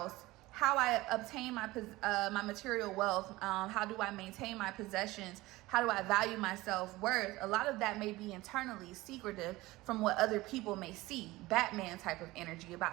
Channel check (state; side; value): quieter; left; 19.3 dB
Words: how I obtain my material wealth, how do I maintain my possessions, how do I value my self-worth, a lot of that may be internally secretive from what other people may see. Batman type of energy